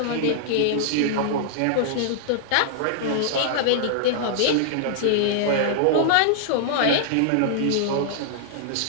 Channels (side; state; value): both; different; correlation -0.01